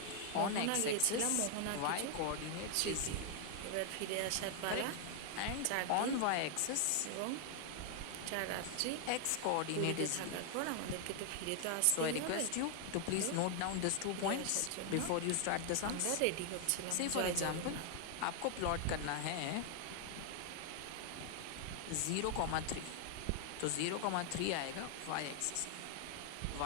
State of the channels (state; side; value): different; both; correlation 0.00